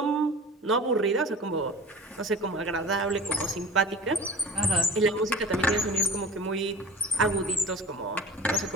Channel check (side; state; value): both; normal; correlation 0.38